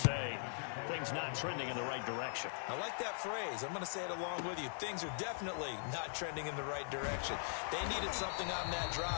say things not trending in the right direction. I like that phrase. I'm going to say it along with you. Things are definitely not trending in the right direction. They needed something on that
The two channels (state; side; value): silent; right; 50 dB below the other